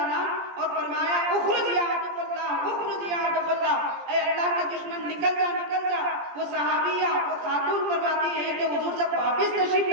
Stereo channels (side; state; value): left; late; 17 ms